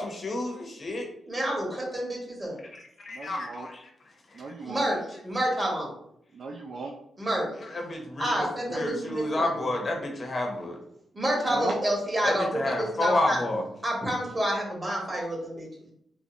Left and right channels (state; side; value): normal; both; correlation 0.87